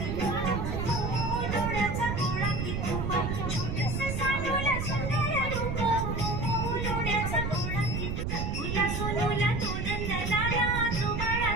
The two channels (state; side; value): noise; right; rumble, 2 dB below the sound